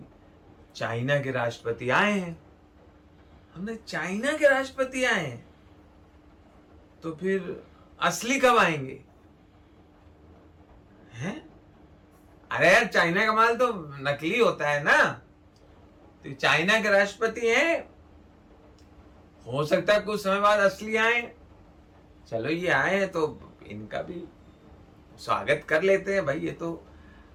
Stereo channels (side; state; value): both; identical; correlation 1.00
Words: चाइना के राष्ट्रपति आए हैं। हमने चाइना के राष्ट्रपति आए हैं तो फिर असली कब आएंगे हैं? अरे यार चाइना का माल तो नकली होता है ना। तो चाइना के राष्ट्रपति हैं, हो सकता है कुछ समय बाद असली आए। चलो ये आए हैं तो इनका भी स्वागत कर लेते हैं भाई। ये तो